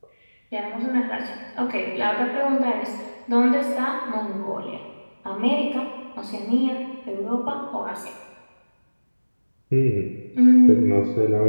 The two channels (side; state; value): both; inverted; correlation -1.00